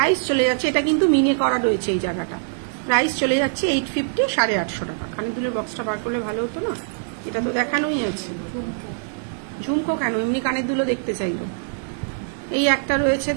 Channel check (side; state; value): left; silent; digital silence